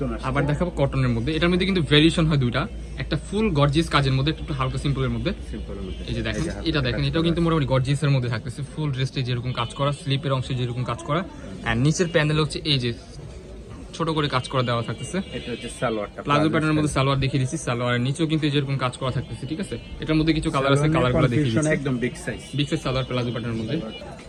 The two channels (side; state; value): both; identical; correlation 1.00